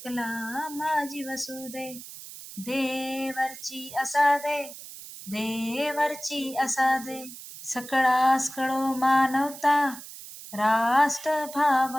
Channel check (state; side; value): noise; right; hiss, 14 dB below the sound